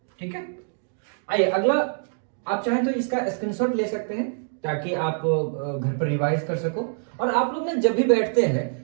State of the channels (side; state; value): left; silent; digital silence